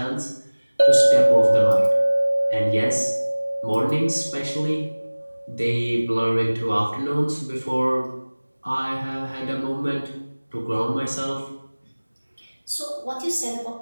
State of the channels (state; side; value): inverted; both; correlation -1.00